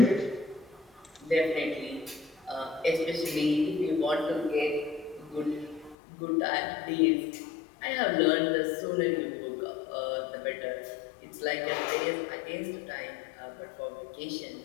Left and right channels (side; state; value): right; drops out; at 6.0 s